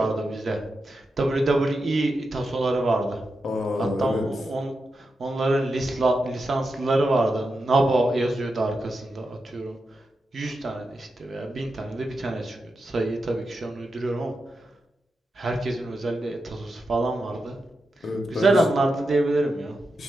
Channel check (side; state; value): both; normal; correlation 0.88